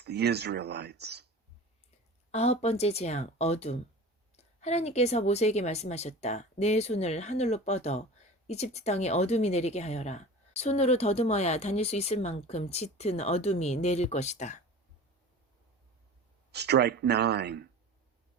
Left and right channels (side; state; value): both; normal; correlation 0.36